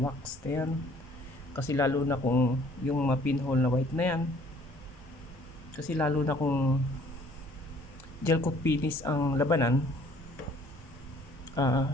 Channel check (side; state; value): both; normal; correlation 0.57